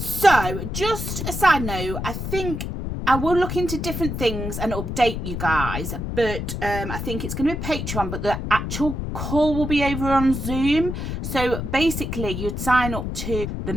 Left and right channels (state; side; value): noise; left; rumble, 4 dB below the sound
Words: just a side note, I think I will look into different things and update you guys, but I think it's going to be Patreon, but the actual call will be over on Zoom. So basically you'd sign up to the